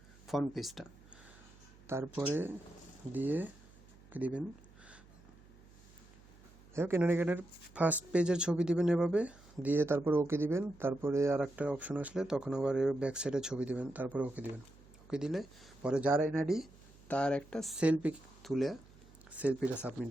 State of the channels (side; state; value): right; noise; hum, 24 dB below the sound